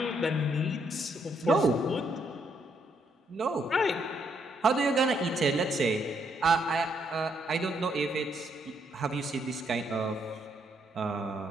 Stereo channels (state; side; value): normal; both; correlation 0.74